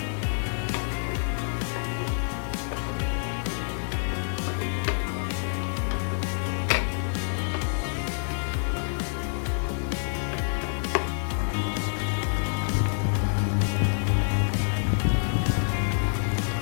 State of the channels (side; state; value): right; silent; digital silence